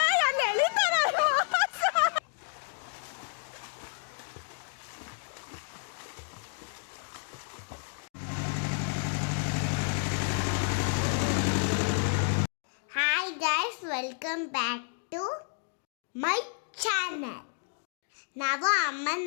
Welcome back to my channel. ನಾವು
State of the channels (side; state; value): right; silent; 57 dB below the other